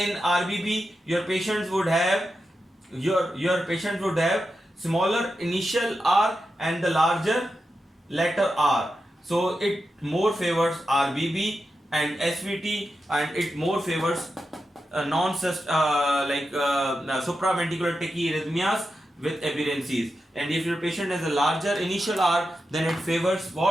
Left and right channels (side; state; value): both; normal; correlation 0.89